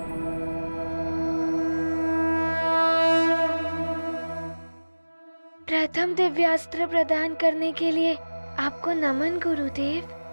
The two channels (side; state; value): both; inverted; correlation -1.00